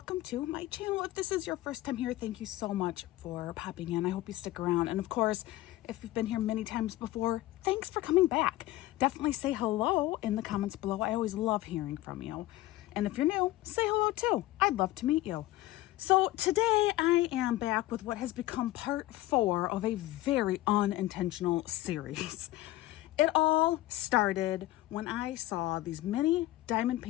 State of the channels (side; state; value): right; quieter; 16.6 dB